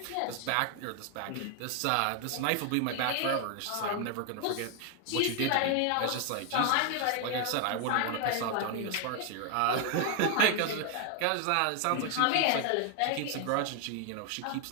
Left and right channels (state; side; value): different; both; correlation 0.00